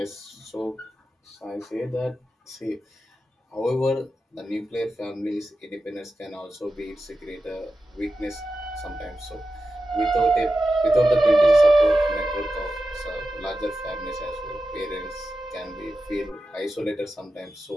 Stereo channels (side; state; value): both; normal; correlation 0.91